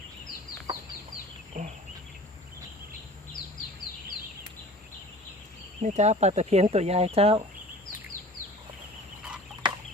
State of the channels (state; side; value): normal; both; correlation 0.42